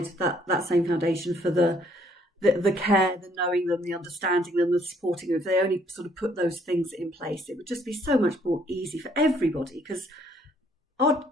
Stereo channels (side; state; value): both; normal; correlation 0.65